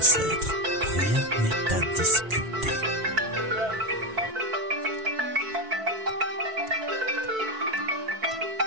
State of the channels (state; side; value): late; left; 4.5 ms